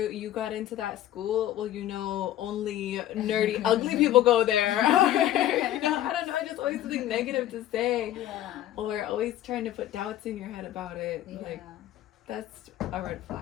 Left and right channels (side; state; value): right; quieter; 13.0 dB